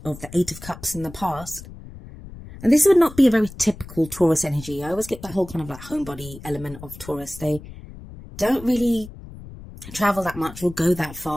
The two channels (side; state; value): left; noise; rumble, 16 dB below the sound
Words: of the 8 of Cups in the past. And this would not be a very typical Taurus energy. I always get that whole kind of like homebody element of Taurus. They don't really travel that much or go that